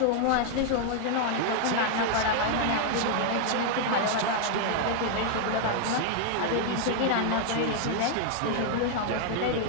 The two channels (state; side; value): different; both; correlation 0.00